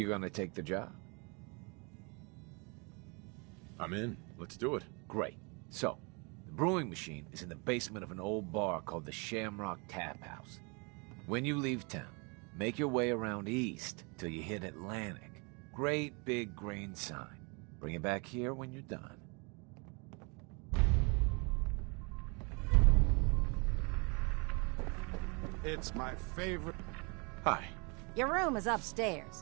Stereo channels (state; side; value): quieter; left; 31.8 dB